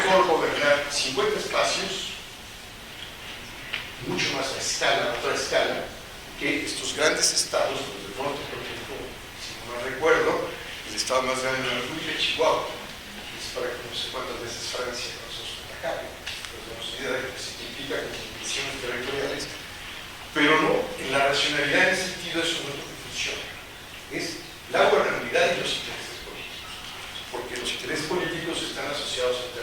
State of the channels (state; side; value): identical; both; correlation 1.00